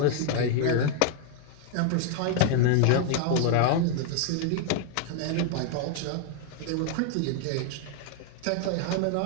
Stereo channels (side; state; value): both; different; correlation 0.00